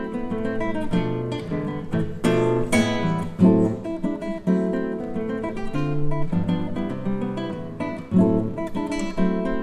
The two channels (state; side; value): identical; both; correlation 1.00